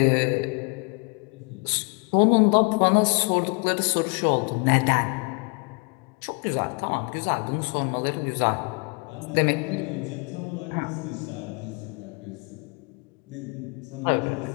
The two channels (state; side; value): quieter; right; 32.7 dB